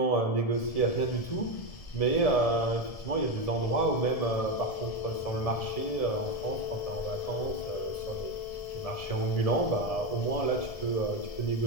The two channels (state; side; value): late; right; 1.7 ms